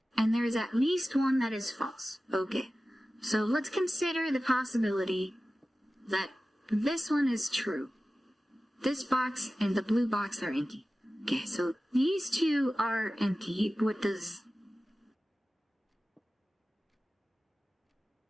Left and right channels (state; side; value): normal; both; correlation 0.95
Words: And there is at least one that is false. Okay, so let's consider the possibility that this one is true. This box and the blue box are empty. Okay, so these 2 are empty. What does...